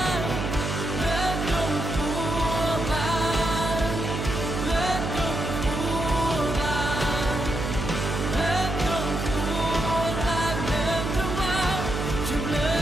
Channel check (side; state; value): right; noise; hum, 3 dB below the sound